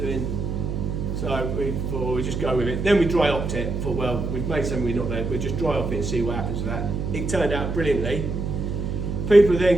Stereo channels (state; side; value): noise; right; hum, 3 dB below the sound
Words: So we thought we'd just go with it. Then we dry hopped it. Thought, well, we've made something we're not there. We'll just dry hop it and see what happens with that. It turned out brilliantly. People are